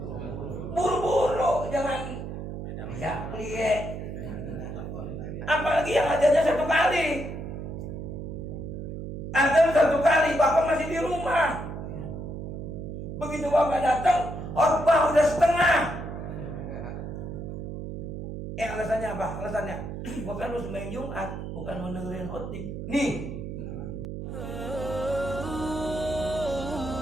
Buru-buru, jangan ya plie. Apalagi yang azannya 1 kali. Azan 1 kali, bapak masih di rumah. Begitu bapak datang, khotbah udah setengah. Alasannya apa? Alasannya bukan lu sembahyang Jumat, bukan mendengarin khotib. Nih.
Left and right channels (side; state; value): right; noise; hum, 7 dB below the sound